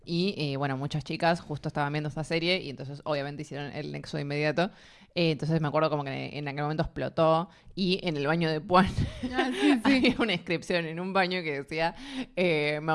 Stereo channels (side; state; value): both; identical; correlation 1.00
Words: y bueno, muchas chicas justo estaban viendo esta serie y entonces obviamente hicieron el nexo de inmediato. Entonces me acuerdo como que en aquel momento explotó y en el baño de Puan había una inscripción en un baño que decía